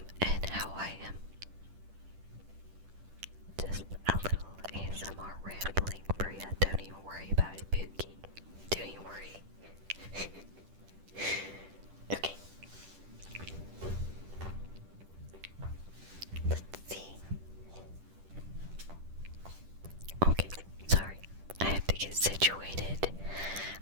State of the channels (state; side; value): late; left; 10 ms